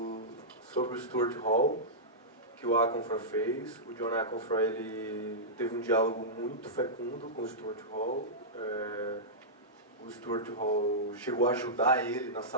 sobre o Stuart Hall, que o Aconfra fez. O John Aconfra, ele teve um diálogo muito fecundo com o Stuart Hall. O Stuart Hall chegou a ajudar ele na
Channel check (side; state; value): both; normal; correlation -0.13